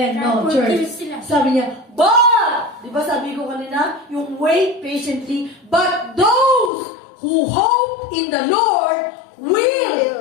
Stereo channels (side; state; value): right; drops out; at 6.7 s